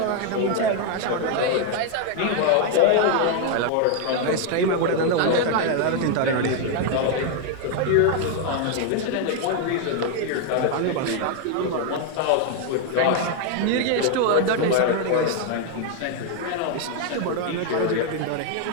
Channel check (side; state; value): both; different; correlation 0.01